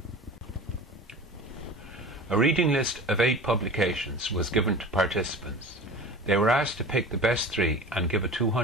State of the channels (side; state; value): both; normal; correlation 0.36